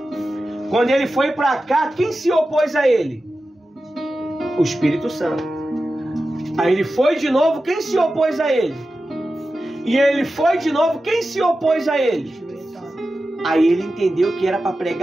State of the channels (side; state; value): both; normal; correlation 0.93